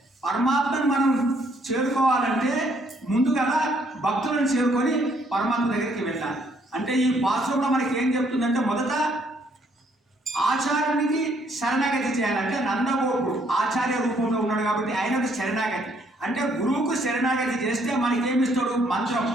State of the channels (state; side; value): normal; both; correlation 0.67